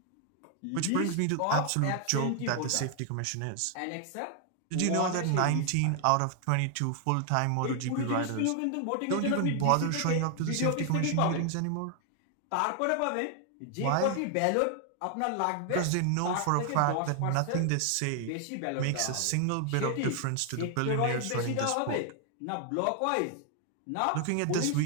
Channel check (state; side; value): different; both; correlation 0.00